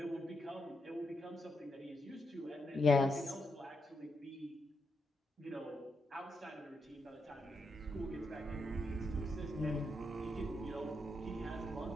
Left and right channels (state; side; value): normal; both; correlation 0.82